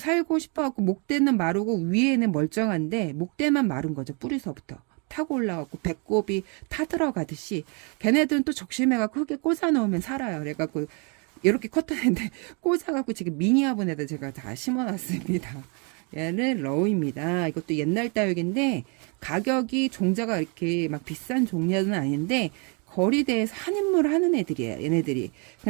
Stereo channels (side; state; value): left; quieter; 34.9 dB